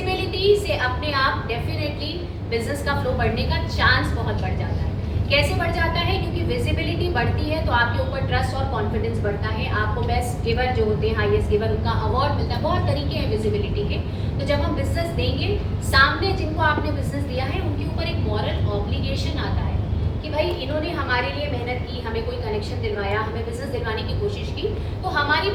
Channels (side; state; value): both; identical; correlation 1.00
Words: से अपने आप डेफिनेटली बिजनेस का फ्लो बढ़ने का चांस बहुत बढ़ जाता है। कैसे बढ़ जाता है? क्योंकि विजिबिलिटी बढ़ती है तो आपके ऊपर ट्रस्ट और कॉन्फिडेंस बढ़ता है। आपको बेस्ट गिवर जो होते हैं, हाईएस्ट गिवर, उनका अवार्ड मिलता है। बहुत तरीके हैं विजिबिलिटी के। तो जब हम बिजनेस देंगे, सामने जिनको आपने बिजनेस दिया है उनके ऊपर एक मॉरल ऑब्लिगेशन आता है कि भाई इन्होंने हमारे लिए मेहनत की, हमें कोई कनेक्शन दिलवाया, हमें बिजनेस दिलवाने की कोशिश की, तो हमारी